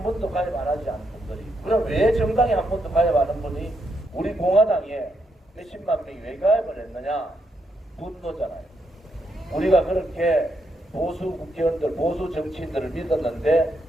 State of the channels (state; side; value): normal; both; correlation 0.79